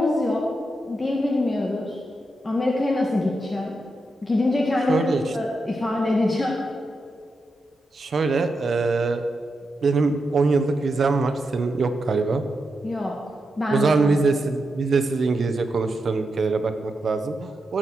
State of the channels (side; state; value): both; normal; correlation 0.86